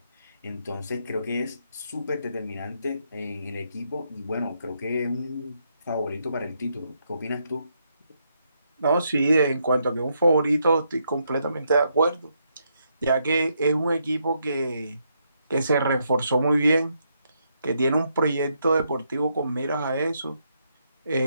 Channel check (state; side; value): inverted; both; correlation -0.77